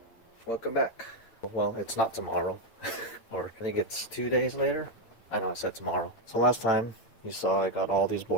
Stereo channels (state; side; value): late; right; 8.9 ms